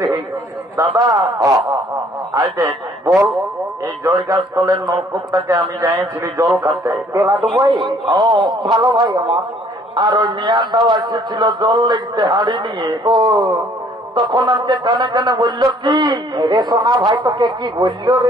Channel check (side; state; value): both; normal; correlation 0.60